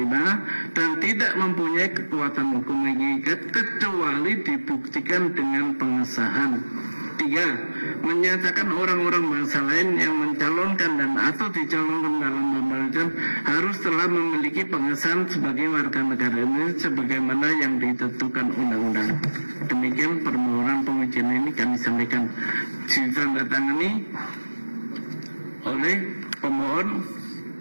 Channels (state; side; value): inverted; both; correlation -1.00